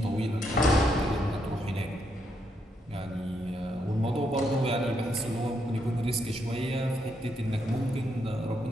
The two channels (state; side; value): normal; both; correlation 0.77